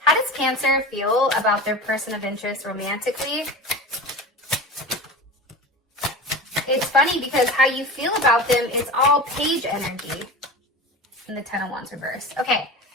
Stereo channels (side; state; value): both; normal; correlation 0.30